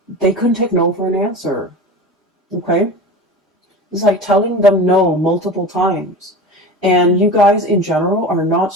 they couldn't take no for an answer. Okay? It's like telling them no multiple times. And you guys in general are not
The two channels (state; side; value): normal; both; correlation 0.32